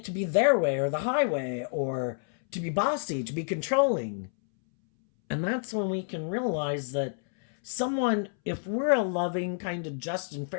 to be their way or the highway, or to be bossy, to be controlling. And that's when we can realize that someone, if we're a loving, kind of just and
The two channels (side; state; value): right; silent; 59 dB below the other